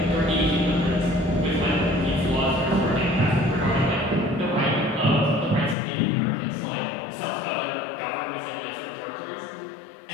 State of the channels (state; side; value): drops out; right; at 5.8 s